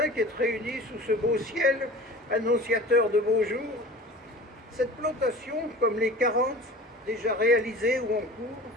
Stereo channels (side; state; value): both; normal; correlation 0.40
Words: qui êtes réunis sous ce beau ciel annonciateur de beaux jours, cette plantation, comme les 40 déjà réalisées ou en cours,